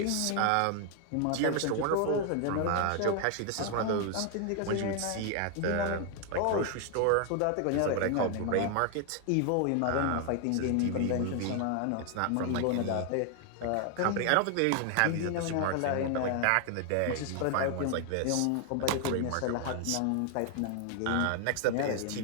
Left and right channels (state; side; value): different; both; correlation 0.00